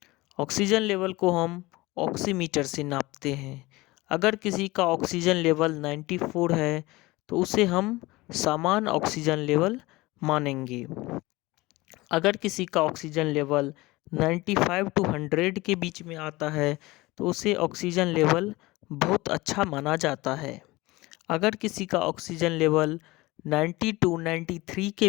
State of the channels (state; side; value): quieter; right; 20.9 dB